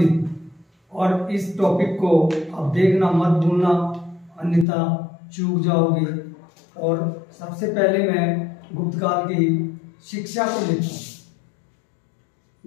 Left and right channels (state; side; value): drops out; right; at 4.7 s